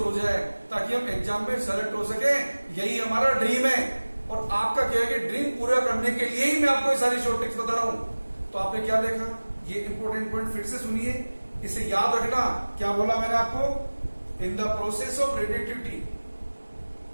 हो जाए, ताकि हम एग्जाम में सेलेक्ट हो सके। यही हमारा ड्रीम है और आपका क्या है कि ड्रीम पूरा करने के लिए ही मैं आपको ये सारी शॉर्ट टिप्स बता रहा हूं। तो आपने क्या देखा, ये इंपॉर्टेंट पॉइंट फिर से सुनिए, इसे याद रखना। क्या बोला मैंने आपको, in the process of radioactivity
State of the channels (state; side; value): inverted; both; correlation -1.00